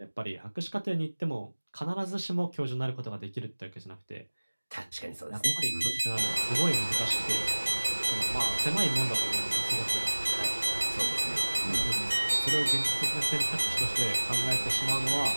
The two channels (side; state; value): both; inverted; correlation -1.00